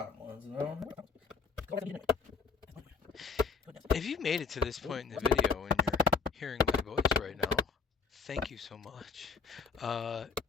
ones and I don't know. If you made it to this point in the video and you're hearing my voice right now, thank you so much.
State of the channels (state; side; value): quieter; right; 5.2 dB